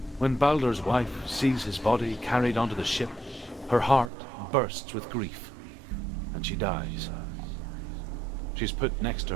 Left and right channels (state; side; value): drops out; left; at 4.1 s